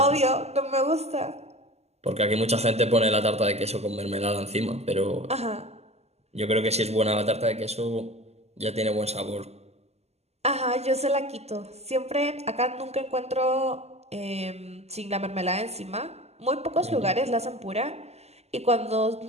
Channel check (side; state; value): left; late; 0.30 ms